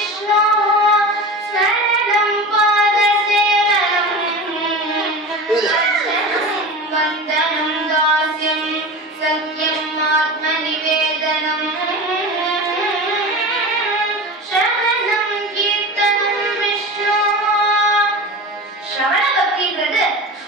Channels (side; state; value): both; normal; correlation 0.30